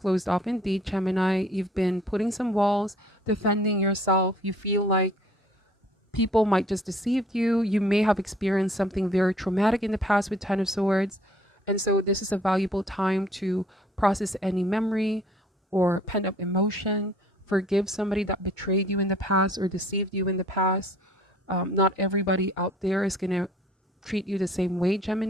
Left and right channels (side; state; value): both; normal; correlation 0.56